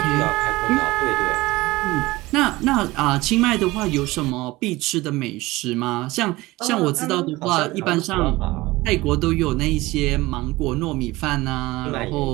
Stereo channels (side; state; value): left; quieter; 19.8 dB